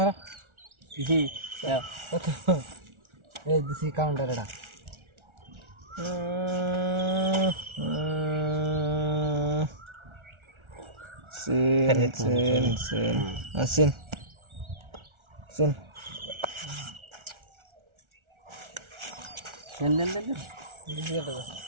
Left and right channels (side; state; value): left; late; 1.4 ms